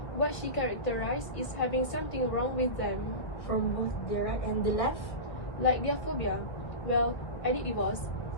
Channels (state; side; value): late; right; 1.8 ms